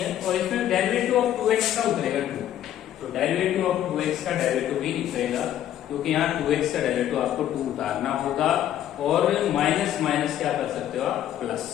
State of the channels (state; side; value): quieter; right; 11.5 dB